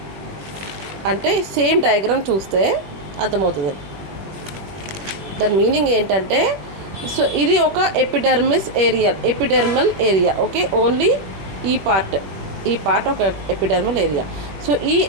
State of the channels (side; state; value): left; late; 21 ms